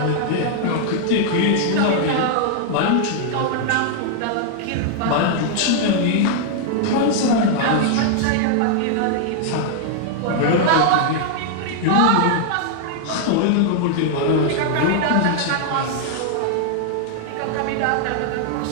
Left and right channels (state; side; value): different; both; correlation 0.00